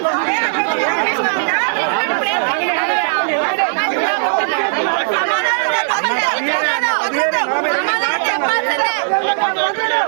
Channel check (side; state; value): left; silent; digital silence